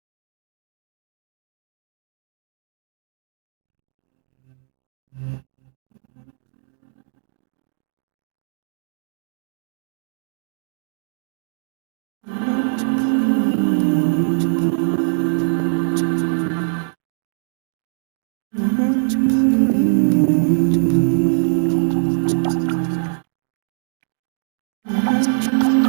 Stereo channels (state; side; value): silent; left; digital silence